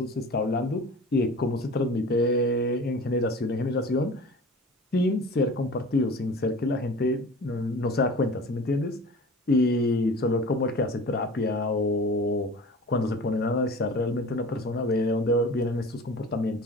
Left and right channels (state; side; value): normal; both; correlation 0.39